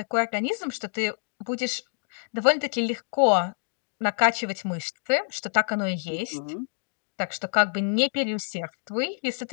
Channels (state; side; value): silent; right; digital silence